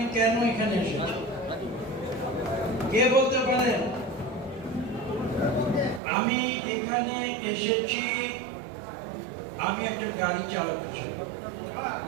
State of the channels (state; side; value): drops out; left; at 6.0 s